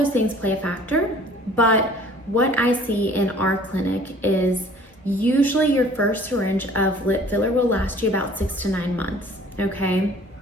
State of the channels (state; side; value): normal; both; correlation 0.52